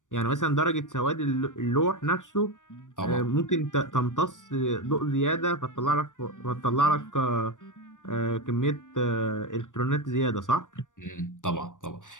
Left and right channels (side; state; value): right; late; 0.87 ms